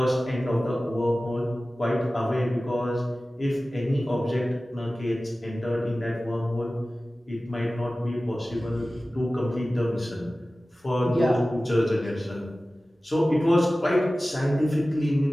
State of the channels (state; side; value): normal; both; correlation 0.96